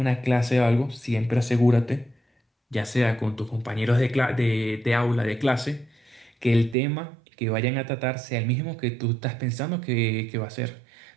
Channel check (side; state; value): left; drops out; at 6.8 s